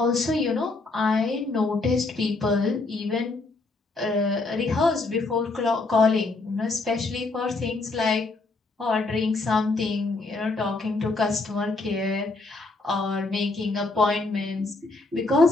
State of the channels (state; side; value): quieter; right; 3.4 dB